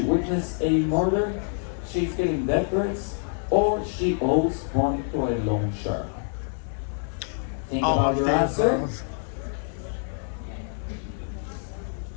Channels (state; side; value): silent; right; 61 dB below the other